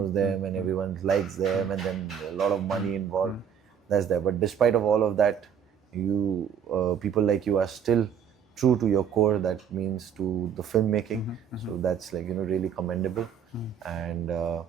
them and everyone likes them, and then a lot of money involved. That's there. But despite of all of that, people like you are still true to your core, that means to the filmmaking. So that's really commendable. And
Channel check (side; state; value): left; quieter; 7.9 dB